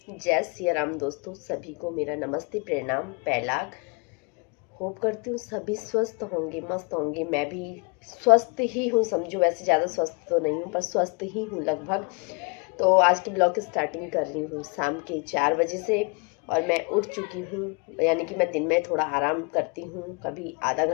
जय सिया राम दोस्तों, सभी को मेरा नमस्ते प्रणाम पैलाग। होप करती हूँ सभी स्वस्थ होंगे, मस्त होंगे। मैं भी स्वस्थ ही हूँ, समझो। वैसे ज़्यादा स्वस्थ तो नहीं हूँ पर स्वस्थ ही हूँ लगभग। तो आज की ब्लॉग की स्टार्टिंग कर रही हूँ शाम के 4 बजे से। और मैं उठ चुकी हूँ, यानी कि मैं दिन में थोड़ा आराम करती हूँ। कभी आधा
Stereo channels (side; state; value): right; quieter; 33.3 dB